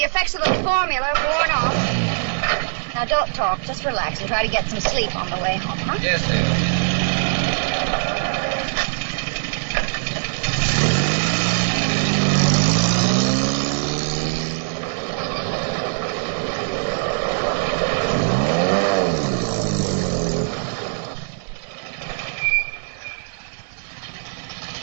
of the formula worn off. Now, don't talk. Just relax and try to get some sleep on the way home, huh? Yes, dear.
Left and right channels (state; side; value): silent; left; digital silence